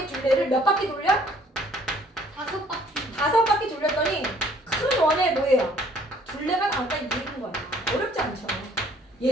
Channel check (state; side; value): normal; both; correlation 0.59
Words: 둘레를 몇 바퀴 돌려? 5바퀴. 5바퀴 돌렸더니 큰 원의 뭐예요? 둘레가 나왔다 이 얘기인 거야. 어렵지 않죠?